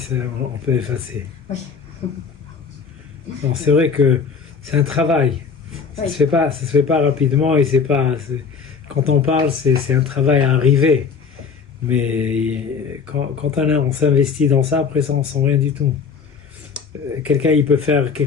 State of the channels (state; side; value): quieter; right; 5.7 dB